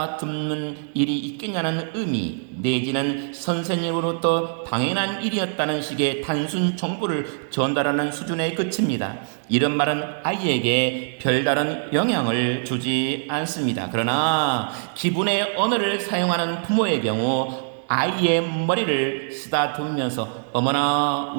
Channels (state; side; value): silent; left; digital silence